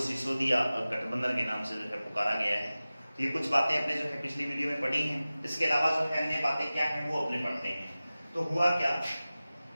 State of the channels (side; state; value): both; inverted; correlation -0.97